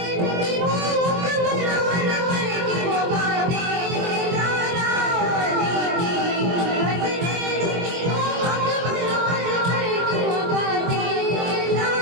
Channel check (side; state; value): left; late; 23 ms